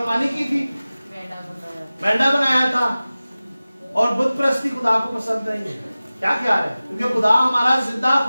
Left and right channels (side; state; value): both; inverted; correlation -0.97